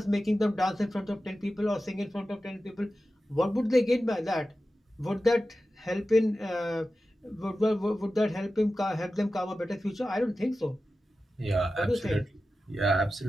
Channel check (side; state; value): both; normal; correlation 0.93